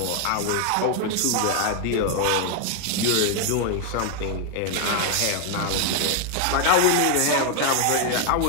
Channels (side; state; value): both; different; correlation 0.00